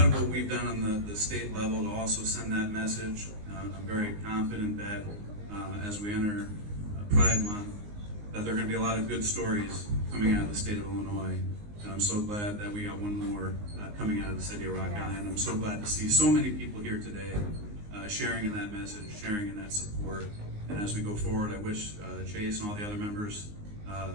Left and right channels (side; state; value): left; late; 19 ms